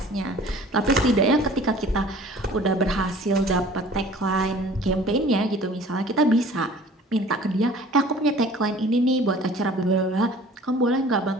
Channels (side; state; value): both; normal; correlation 0.48